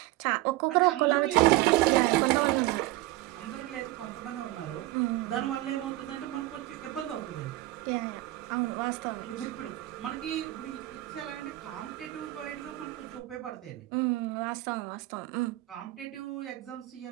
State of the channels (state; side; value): quieter; left; 17.3 dB